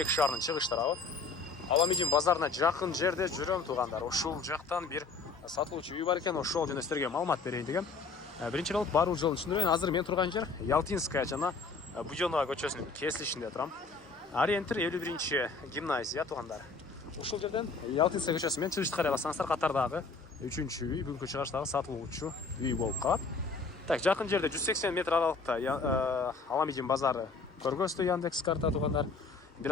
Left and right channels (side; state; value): right; quieter; 4.3 dB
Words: шаарынын чыгыштары. Аламедин базарына жақын жерде жүрөм туғандар. Ошол жақтан бир сатылуучу үй бар экен, ошол жөнүндө силерге маалымат берейин дегем. Биринчи болуп баруу жолун түшүндүрөйүн. Азыр мен турган жер Ялтинская жана Будёнова көчөсүнүн кесилишинде турам. Ориентир 51 гимназия туғандар. Ушул жерден Ялтинская көчөсү менен чыгышты карай алсаңыздар, катардагы 3-чү үй, бүгүнкү чыгыштагы сатылуучу үй болуп калат. Так, жакын жерде 180 метр аралыкта Аламедин базары көргөзтү Яндекс карта тугандар. Бир